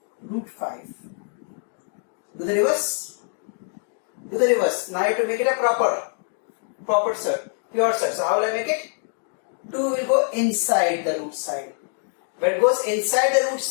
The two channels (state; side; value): silent; right; 62 dB below the other